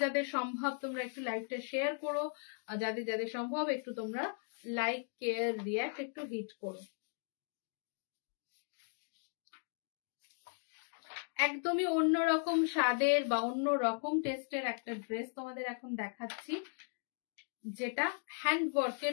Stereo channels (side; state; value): right; silent; 53 dB below the other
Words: যাদের সম্ভব তোমরা একটু লাইভটা শেয়ার করো, যাদের যাদের সম্ভব একটু তোমরা লাইক কে রিয়াক্ট একটু হিট করো। একদমই অন্যরকম স্বাদের বা অন্য রকম টেস্টের একটা ড্রেস তোমাদের এখন দেখাচ্ছি, যেটা হ্যান্ড